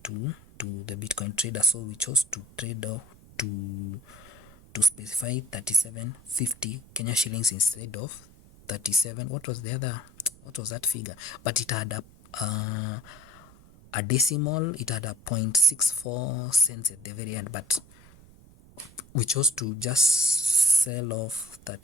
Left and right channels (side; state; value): right; noise; rumble, 23 dB below the sound